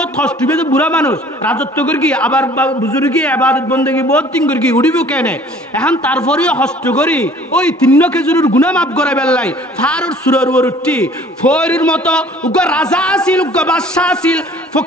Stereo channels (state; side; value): normal; both; correlation 0.52